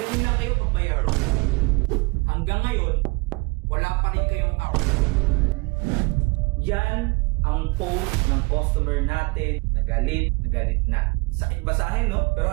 lang kayo pag mayroon. Hanggang ngayon, wala pa rin kayong ako. Yan ang post ng customer natin na galit na. Sakit basahin, no? Pero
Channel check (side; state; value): left; quieter; 27.9 dB